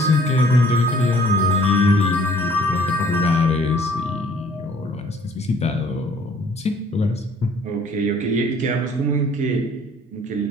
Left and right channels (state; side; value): normal; both; correlation 0.57